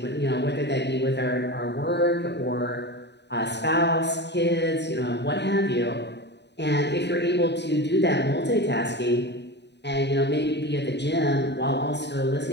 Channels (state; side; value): late; right; 0.50 ms